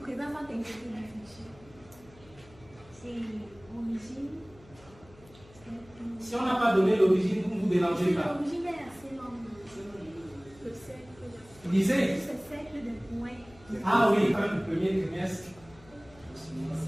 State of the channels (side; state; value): left; noise; hum, 24 dB below the sound